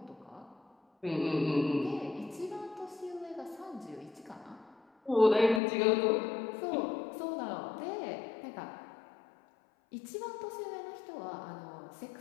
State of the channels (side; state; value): right; drops out; at 5.6 s